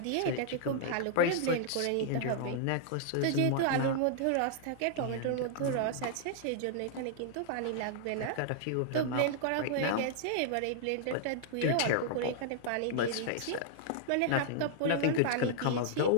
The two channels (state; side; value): different; both; correlation -0.01